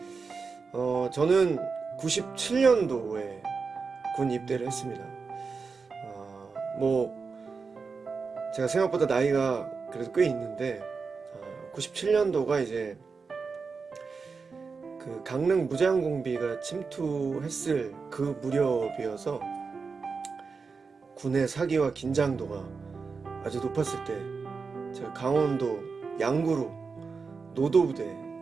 저는 97년도에 군 입대를 했습니다. 제가 생각보다 나이가 그래도 꽤 있는데 97년도가 이제 그 강릉 무장공비가 침투했을 그 무렵이어서 군의 사기와 긴장도가 아주 높았을 때 제가 강원도 양구로 노도부대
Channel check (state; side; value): quieter; left; 4.9 dB